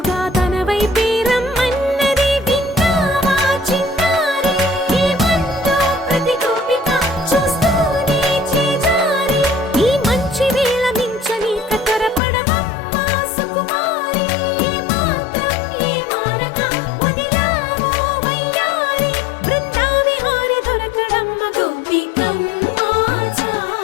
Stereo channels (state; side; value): drops out; right; at 12.2 s